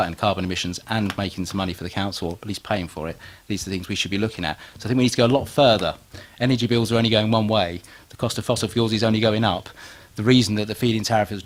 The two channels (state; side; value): identical; both; correlation 1.00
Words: carbon emissions and making some money for the council, or at least paying for it. These are the things we should be looking at. So I think we need to go a lot further. Energy bills are only going one way. The cost of fossil fuels is only going up. The reason that the feed-in tariff has